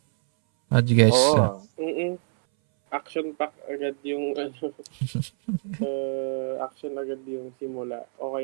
How do you guys Action pack agad yung action agad yung simula.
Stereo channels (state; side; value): silent; left; 61 dB below the other